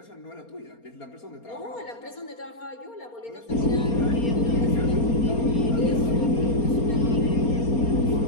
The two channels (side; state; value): right; late; 4.3 ms